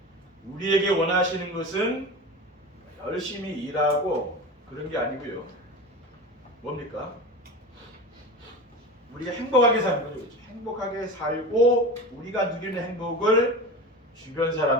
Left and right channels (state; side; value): normal; both; correlation 0.29